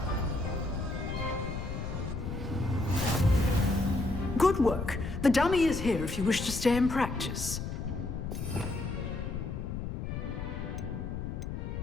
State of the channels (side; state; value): left; noise; rumble, 5 dB below the sound